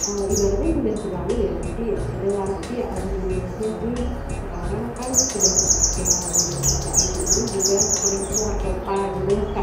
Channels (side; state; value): both; identical; correlation 1.00